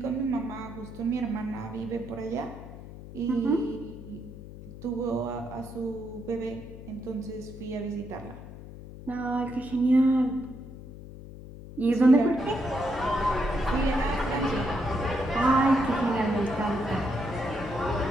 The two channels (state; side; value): noise; left; hum, 14 dB below the sound